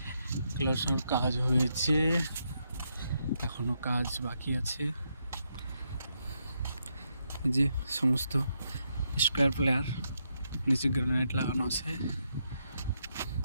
ক্লোজের কাজ হয়েছে, এখনো কাজ বাকি আছে। এই যে সমস্ত স্কোয়ার প্লেয়ার, নিচে গ্রানাইট লাগানো আছে,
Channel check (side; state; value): both; inverted; correlation -0.80